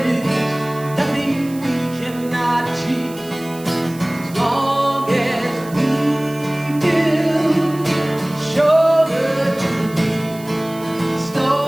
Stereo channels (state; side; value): noise; right; hiss, 19 dB below the sound